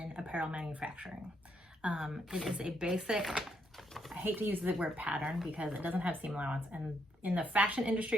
apparel manufacturing. It is a basic, I hate to use the word pattern because it doesn't have seam allowance. And in the fashion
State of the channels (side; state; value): both; normal; correlation 0.76